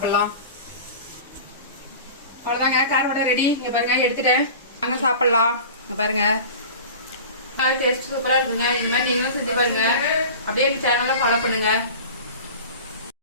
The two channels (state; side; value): inverted; both; correlation -0.37